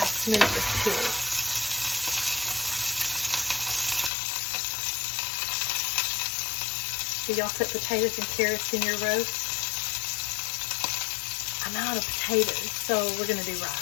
smooth this peels. Do y'all put potatoes and carrots in your roast? I'm out of potatoes, so we're gonna do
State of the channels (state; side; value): drops out; right; at 4.1 s